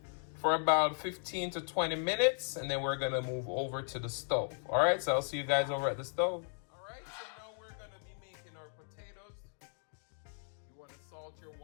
for about 15 to 20 minutes, and then we're gonna move over to the stove. All right, so I'll see you guys over at the stove. All right, so now we're gonna be making our potatoes. You wanna salt your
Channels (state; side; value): silent; right; digital silence